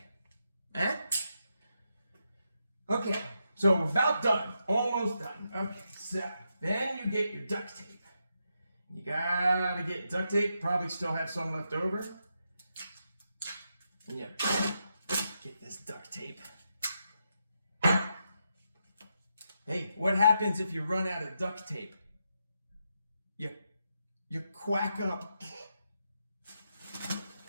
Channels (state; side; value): inverted; both; correlation -0.83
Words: Eh? Okay, so we're about done, almost done. Okay, so then you get your duct tape. You gotta get duct tape, probably still have some left over. And you get this duct tape. Hey, what happens if you run out of duct tape? You quack up.